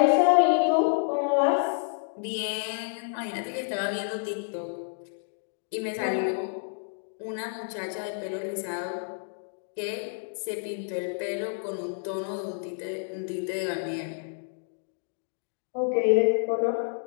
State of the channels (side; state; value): right; silent; digital silence